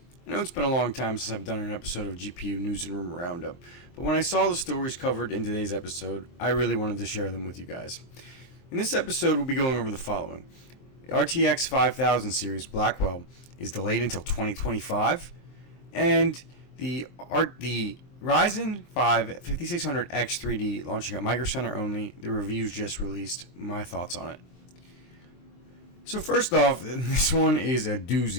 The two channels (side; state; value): right; late; 23 ms